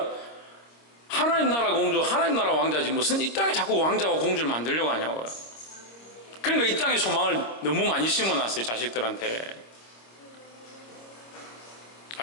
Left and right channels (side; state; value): right; late; 26 ms